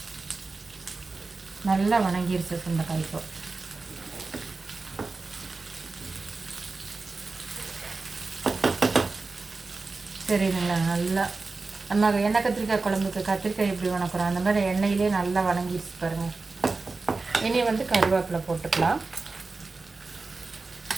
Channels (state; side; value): quieter; left; 3.8 dB